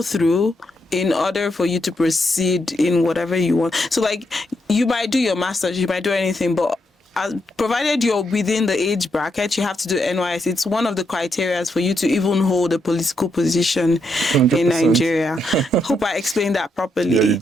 through in order for you to proceed in whatever you want. So like you might do your master's, you might do anything, but provided you're within the age bracket, you have to do NYS. It's one of the criteria for you to even hold a political position 100%. In Nigeria. Hope I explained that properly. Yeah, you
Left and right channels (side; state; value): both; normal; correlation 0.80